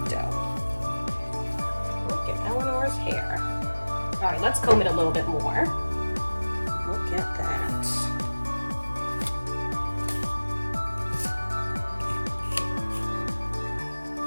Look at Eleanor's hair. Alright, let's comb it a little bit more. Look at that.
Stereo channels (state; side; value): inverted; both; correlation -1.00